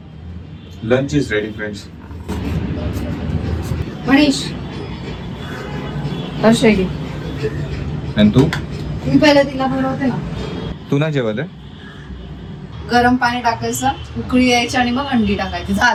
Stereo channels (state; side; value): identical; both; correlation 1.00